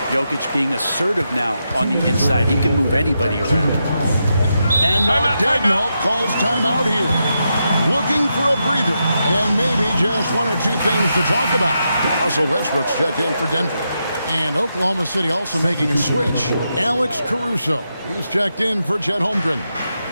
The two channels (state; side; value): inverted; both; correlation -0.85